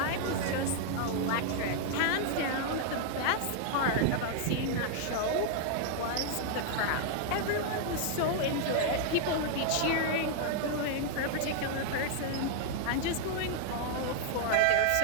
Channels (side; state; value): both; different; correlation 0.00